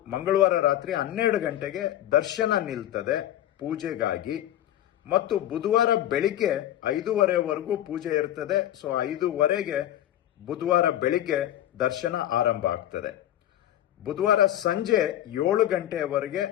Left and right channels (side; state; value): right; quieter; 12.4 dB